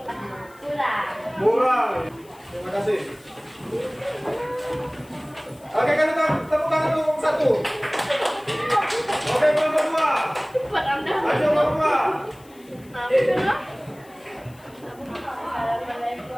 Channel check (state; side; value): noise; left; hiss, 27 dB below the sound